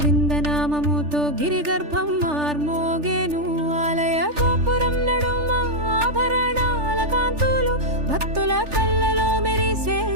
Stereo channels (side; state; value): left; late; 3.4 ms